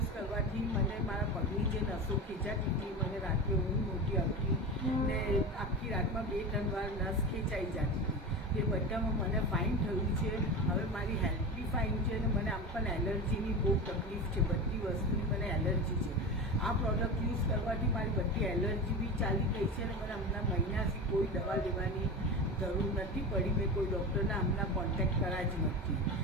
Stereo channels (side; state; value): both; normal; correlation 0.26